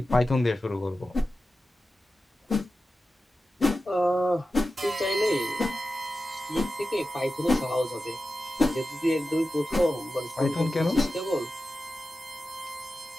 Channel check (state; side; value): normal; both; correlation 0.93